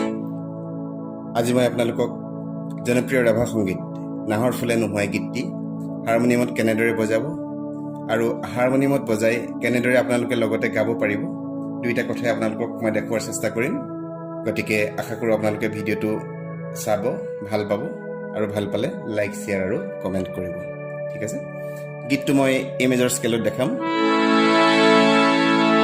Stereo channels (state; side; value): identical; both; correlation 1.00